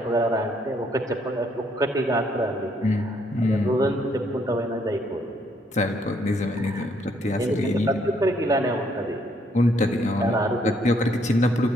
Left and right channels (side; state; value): both; normal; correlation 0.69